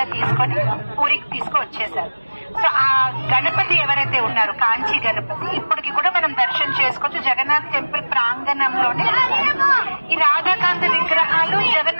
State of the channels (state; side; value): inverted; both; correlation -1.00